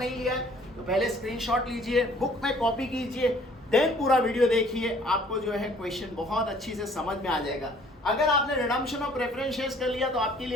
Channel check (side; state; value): both; normal; correlation 0.57